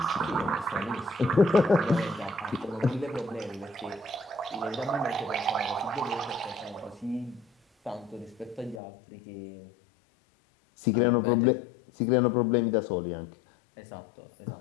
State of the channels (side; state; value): right; drops out; at 8.8 s